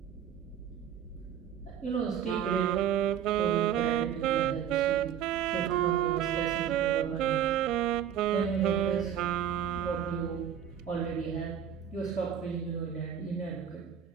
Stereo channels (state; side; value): quieter; left; 9.2 dB